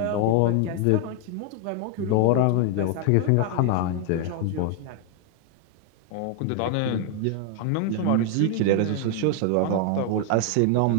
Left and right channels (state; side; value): different; both; correlation 0.01